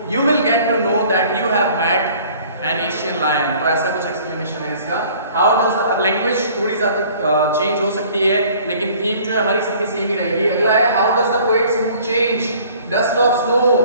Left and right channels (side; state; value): both; inverted; correlation -0.52